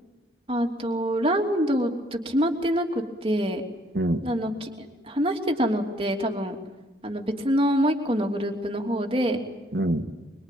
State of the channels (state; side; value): normal; both; correlation 0.65